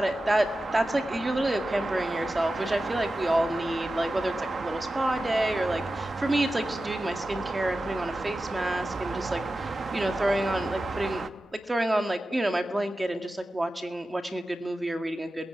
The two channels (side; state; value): both; normal; correlation 0.93